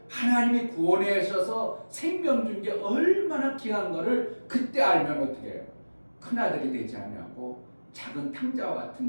하나님이 구원하셔서 생명 준 게 얼마나 귀한 거를 그때 알면 어떻게 해요? 큰아들이 되지 아니하고 작은 탕자와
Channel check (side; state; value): both; inverted; correlation -1.00